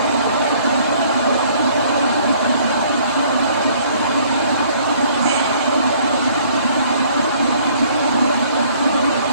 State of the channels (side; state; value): both; inverted; correlation -0.59